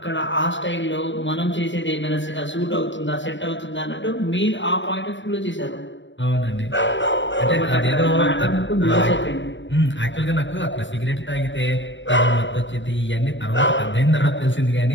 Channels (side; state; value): right; late; 0.54 ms